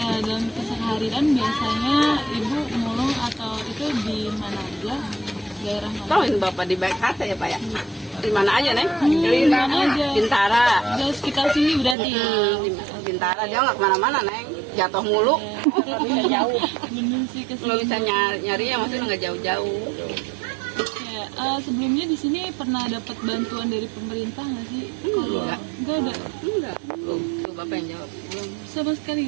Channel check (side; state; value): left; drops out; at 12.0 s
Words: keseharian biasanya Ibu mulung atau itu di mana aja? Daerah mana? Tahuin bapak di BKT ya Pak ya? Di mana aja Neng? Di mana aja? Bintara. Di sekitar sini berarti ya? Bintara, dia nggak kemana-mana Neng, jatuh mulu. Jauh. Bener sih kesini. Nggak bisa nyarinya, maksudnya nggak jauh-jauh. Oke, sebelumnya di sini pernah dapat bantuan dari pemerintah nggak sih? Enggak. Nggak ada. Enggak. Tuh bapak yang jawab. Belum. Sama sekali